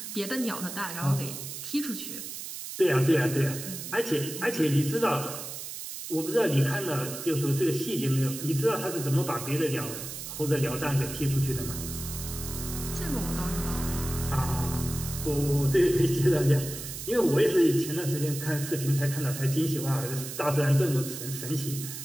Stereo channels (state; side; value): noise; right; hiss, 8 dB below the sound